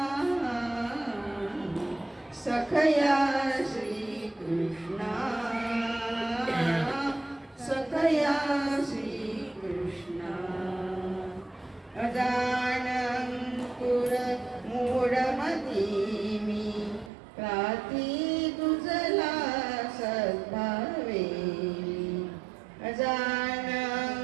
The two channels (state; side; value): drops out; left; at 17.1 s